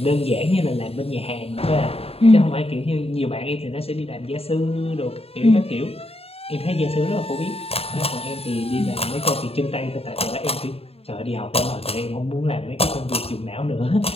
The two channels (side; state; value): right; late; 0.29 ms